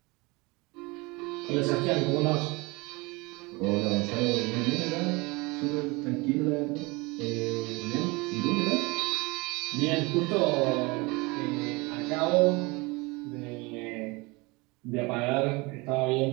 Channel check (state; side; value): quieter; left; 25.5 dB